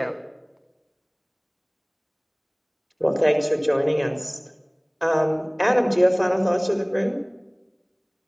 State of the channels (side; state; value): both; identical; correlation 1.00